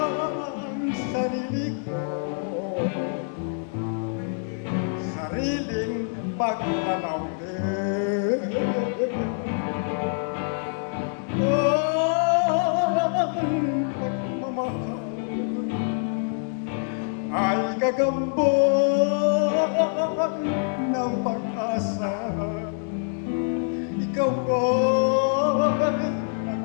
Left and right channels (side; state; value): right; silent; 61 dB below the other